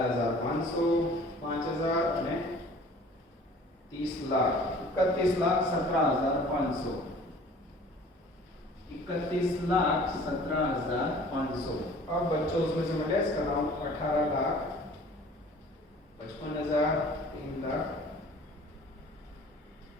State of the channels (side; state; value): both; normal; correlation 0.49